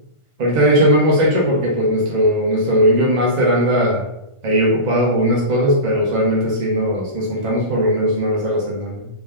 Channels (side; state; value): left; late; 1.5 ms